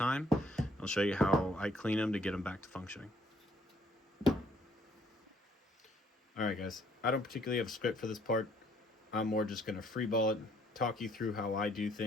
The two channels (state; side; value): normal; both; correlation 0.64